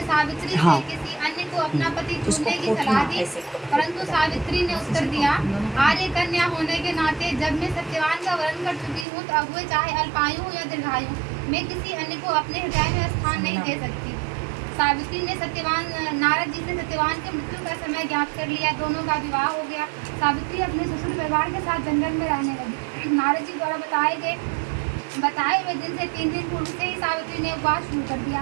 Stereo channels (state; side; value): drops out; left; at 9.1 s